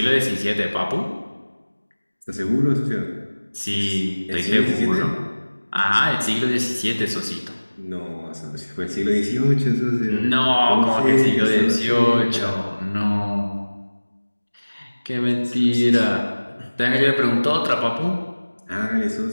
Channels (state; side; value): inverted; both; correlation -1.00